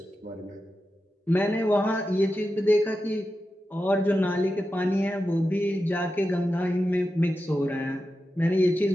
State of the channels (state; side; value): normal; both; correlation 0.90